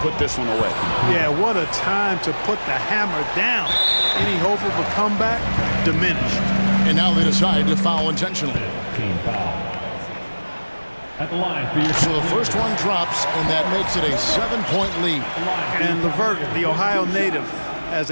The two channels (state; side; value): inverted; both; correlation -1.00